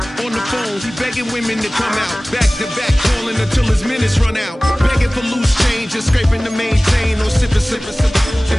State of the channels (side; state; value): both; normal; correlation 0.98